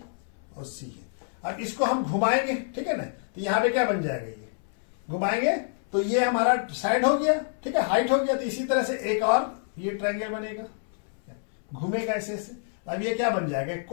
और सी है। अब इसको हम घुमाएंगे, ठीक है ना, तो यहाँ पे क्या बन जाएगा, ये घुमाएंगे तो ये हमारा साइड हो गया, ठीक है, हाइट हो गया। तो इसी तरह से एक और ये ट्रायंगल बनेगा, घूमेगा ऐसे ऐसे। अब ये क्या बन जाएगा,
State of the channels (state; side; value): silent; right; 60 dB below the other